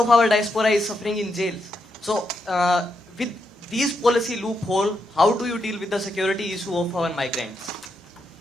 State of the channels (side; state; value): both; normal; correlation 0.82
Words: our diaspora is suffering in jails. So with these policy loophole, how do you deal with the security issue of our migrants?